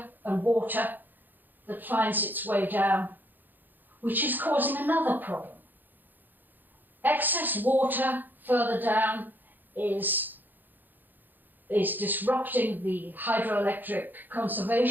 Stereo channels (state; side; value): late; left; 0.088 ms